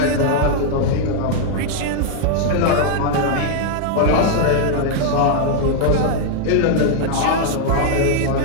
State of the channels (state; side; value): different; both; correlation -0.01